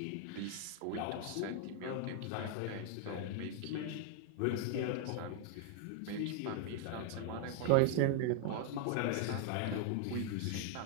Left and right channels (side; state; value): both; different; correlation 0.00